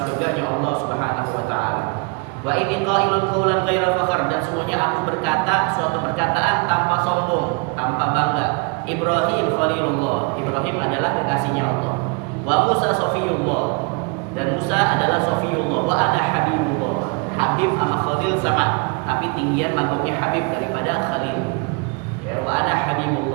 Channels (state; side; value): quieter; left; 31.8 dB